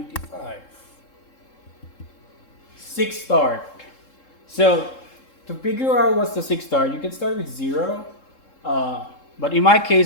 6 start. So to figure out what's the 6 start, you can start with 0. But in my case,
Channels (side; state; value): right; late; 3.7 ms